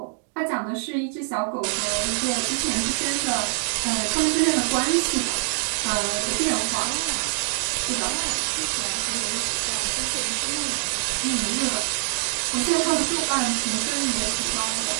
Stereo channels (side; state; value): left; silent; digital silence